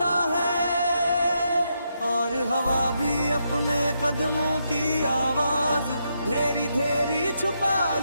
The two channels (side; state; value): both; inverted; correlation -0.81